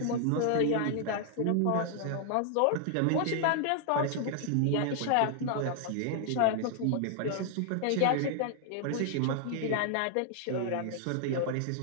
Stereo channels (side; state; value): both; different; correlation 0.00